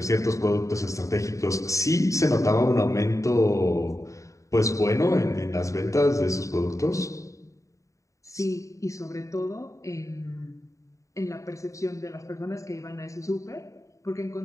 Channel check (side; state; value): right; late; 0.15 ms